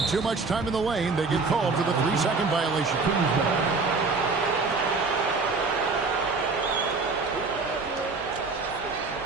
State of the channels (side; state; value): left; quieter; 4.1 dB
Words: too much time in the lane. They get called for the 3-second violation.